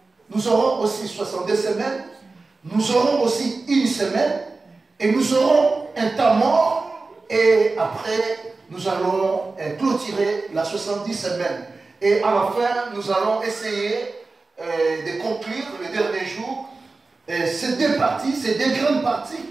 nous aurons aussi 62 semaines, nous aurons aussi une semaine, et nous aurons un temps mort, et après, nous allons clôturer la 70 semaines. Et à la fin, nous allons essayer de conclure le dernier jour ces deux parties, ces deux grandes parties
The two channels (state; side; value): quieter; left; 3.7 dB